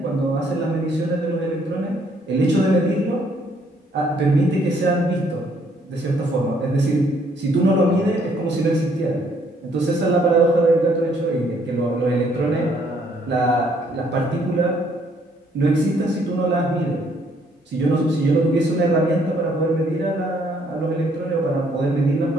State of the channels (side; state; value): both; normal; correlation 0.66